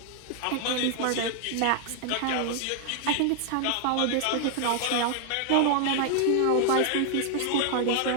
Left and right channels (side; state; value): both; different; correlation 0.00